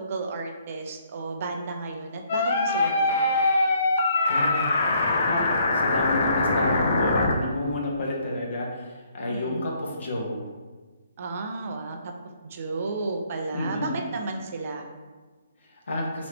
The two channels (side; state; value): both; inverted; correlation -0.66